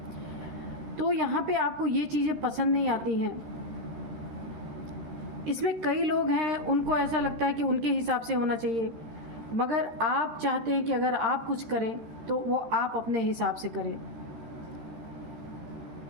तो यहाँ पे आपको ये चीज़ें पसंद नहीं आती हैं। इसमें कई लोग हैं, उनको ऐसा लगता है कि उनके हिसाब से होना चाहिए, मगर आप चाहते हैं कि अगर आप कुछ करें तो वो आप अपने हिसाब से करें।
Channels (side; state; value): left; late; 13 ms